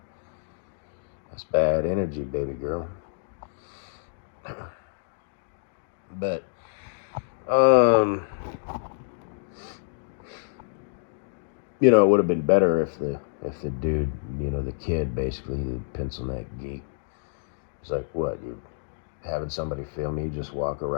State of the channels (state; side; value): silent; right; digital silence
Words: That's bad energy, baby girl. But it would have been better if the if the dude, the kid, basically, the pencil neck geek, is like, what, you having somebody film you just walking